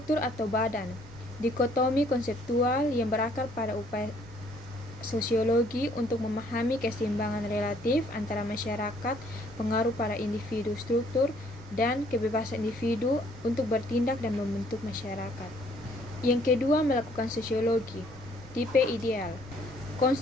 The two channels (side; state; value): right; noise; rumble, 22 dB below the sound